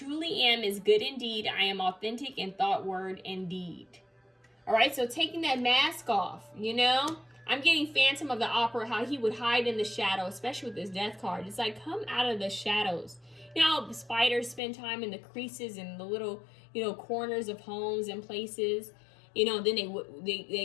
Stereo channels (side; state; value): right; drops out; at 14.6 s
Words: am is good indeed. I am authentic in thought, word, and deed. All right, so taking that mask off, you know, I'm getting Phantom of the Opera, how he would hide in the shadow, especially with this death card. It's like, come out of the shadows. You know how spiders spend time in the creases and the little, you know, corners of homes and places. You know, then